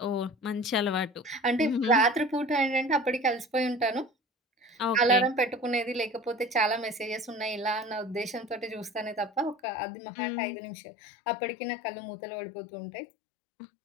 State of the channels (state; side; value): drops out; right; at 9.6 s